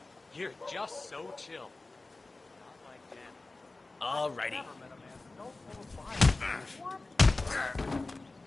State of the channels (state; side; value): quieter; right; 3.3 dB